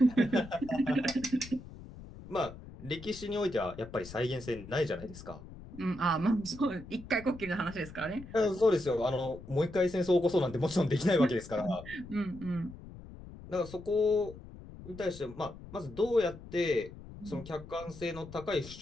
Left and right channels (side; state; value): left; noise; rumble, 15 dB below the sound